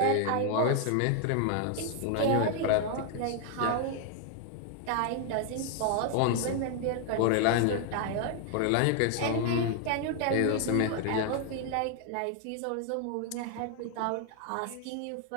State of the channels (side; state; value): both; different; correlation 0.00